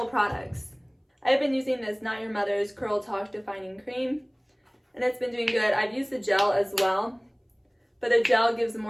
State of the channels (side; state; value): both; identical; correlation 1.00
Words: products. I've been using this Not Your Mother's Curl Talk Defining Cream, and it's been doing good. I've used the gel as well, but the gel gives